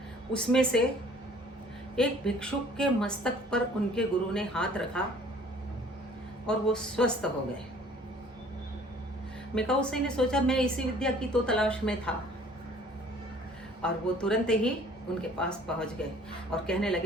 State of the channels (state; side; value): normal; both; correlation 0.53